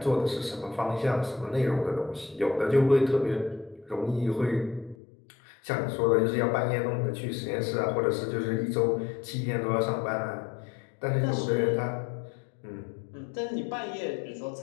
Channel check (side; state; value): right; drops out; at 5.0 s